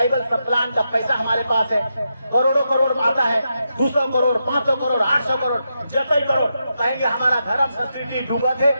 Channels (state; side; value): inverted; both; correlation -0.85